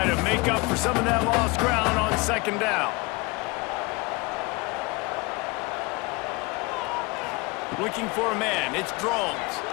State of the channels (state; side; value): quieter; right; 25.9 dB